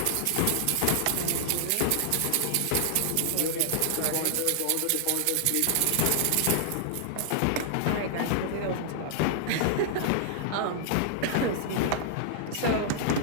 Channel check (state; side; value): different; both; correlation -0.01